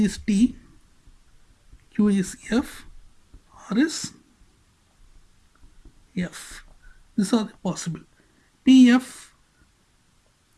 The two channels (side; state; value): both; identical; correlation 1.00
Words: is T, Q is F, or is F. These are the possible. PF,